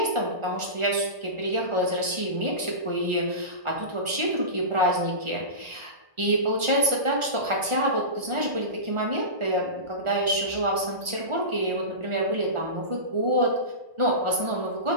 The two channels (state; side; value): late; left; 1.4 ms